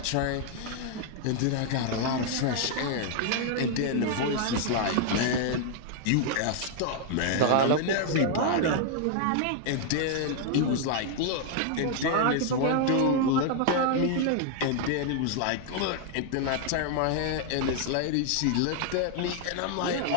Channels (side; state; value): both; different; correlation 0.00